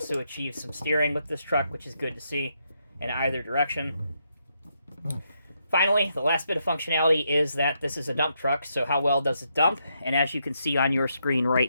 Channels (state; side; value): inverted; both; correlation -0.79